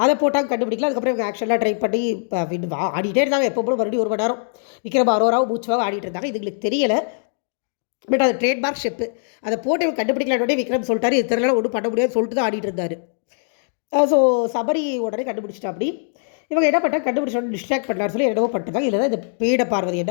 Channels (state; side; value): silent; right; digital silence